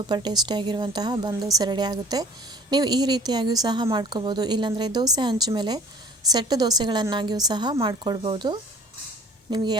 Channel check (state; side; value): normal; both; correlation 0.49